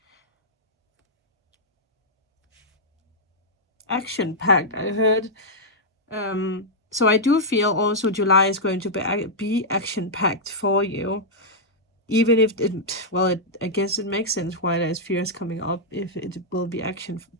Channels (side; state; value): both; normal; correlation -0.06